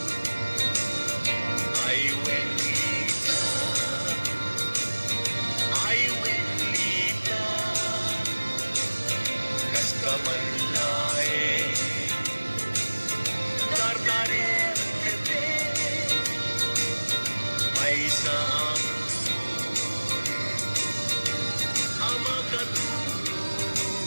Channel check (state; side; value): inverted; both; correlation -1.00